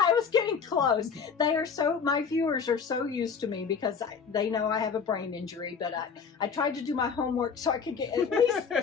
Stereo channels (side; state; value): right; quieter; 6.1 dB